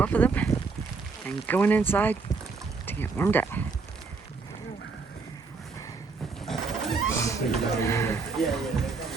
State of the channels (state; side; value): quieter; left; 4.5 dB